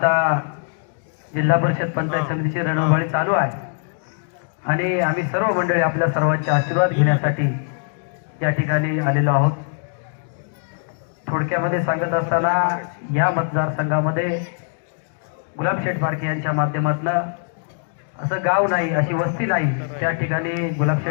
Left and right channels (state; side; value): silent; right; digital silence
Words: जिल्हा परिषद पंचायत समितीची रणधुमाळी चालू आहे आणि आम्ही सर्व मंडळी आपल्या सर्वांचे आशीर्वाद घेण्यासाठी या ठिकाणी आलेलो आहोत. थोडक्यामध्ये सांगत असताना या मतदारसंघामध्ये गुलाबशेठ पारखे यांच्या माध्यमातून असं गाव नाही, अशी वस्ती नाही त्या ठिकाणी